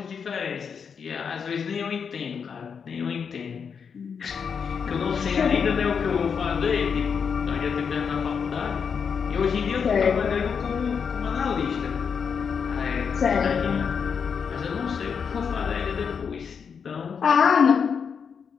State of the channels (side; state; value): right; quieter; 6.5 dB